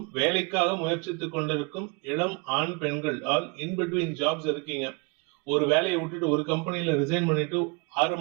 வேலைக்காக முயற்சித்துக் கொண்டிருக்கும் இளம் ஆண் பெண்கள் ஆல் இன்பிட்வீன் ஜாப்ஸ் இருக்கீங்க. ஒரு வேலையை விட்டுட்டு ஒரு கம்பெனில ரிசைன் பண்ணிட்டு 6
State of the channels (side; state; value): left; quieter; 30.2 dB